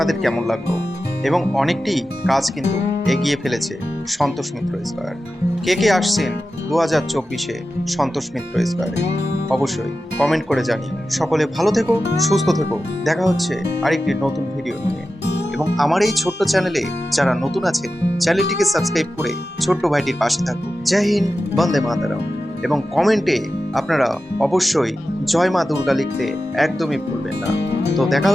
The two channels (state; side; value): normal; both; correlation 0.93